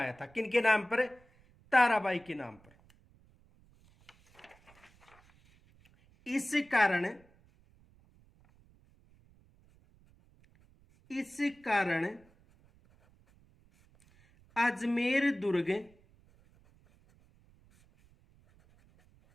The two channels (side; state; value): right; noise; rumble, 30 dB below the sound